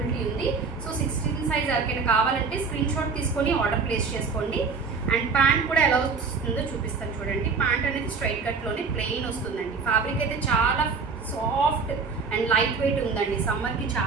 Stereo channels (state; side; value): quieter; left; 4.9 dB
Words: ఉంది. సో 16 సైజ్ ఎవరికైనా కావాలంటే స్క్రీన్ షాట్ తీసుకొని ఆర్డర్ ప్లేస్ చేసుకోండి. అండ్ ప్యాంట్ కూడా ఎలా వస్తుందో చూపిస్తాను చూడండి. ప్యాంట్ అనేది స్ట్రైట్ కట్లోనే ప్లెయిన్ వస్తుందండి. ఫ్యాబ్రిక్ అయితే చాలా సాఫ్ట్ అండ్ లైట్ వెయిట్ ఉందండి. సమ్మర్కి